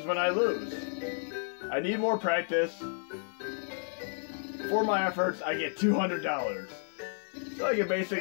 when I lose. I need more practice. For my efforts, I get $200. So I can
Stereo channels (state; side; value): silent; right; 57 dB below the other